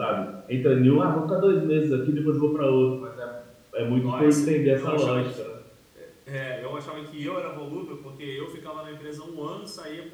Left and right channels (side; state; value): both; identical; correlation 1.00